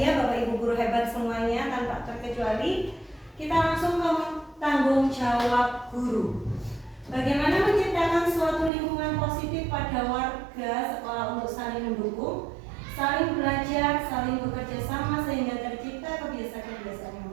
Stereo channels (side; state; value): left; drops out; at 8.7 s